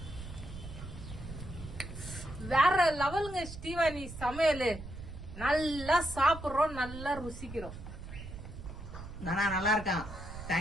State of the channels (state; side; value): noise; right; rumble, 11 dB below the sound